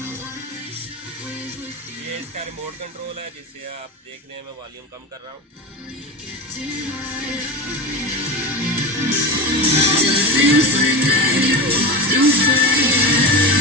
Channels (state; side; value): normal; both; correlation 0.23